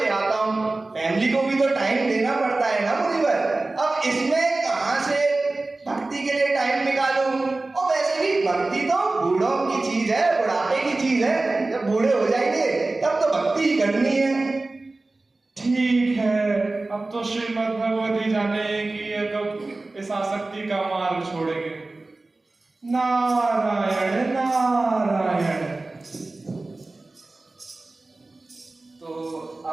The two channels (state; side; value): quieter; left; 3.2 dB